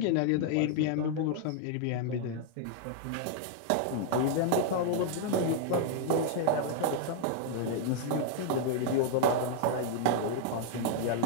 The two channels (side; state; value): both; different; correlation 0.00